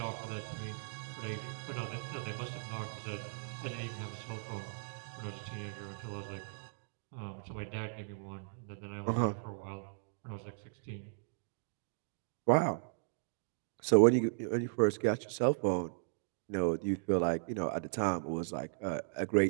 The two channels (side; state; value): left; silent; digital silence